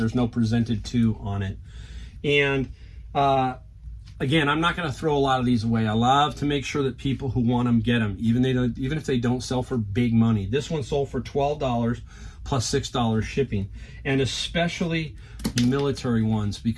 no presented to on it. And again, I'm not going to throw a lot of these away. I love to make sure that people who want them get them, even if they don't sell for big money. This one sold for $12 plus $6 shipping, and especially the military ones,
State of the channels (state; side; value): identical; both; correlation 1.00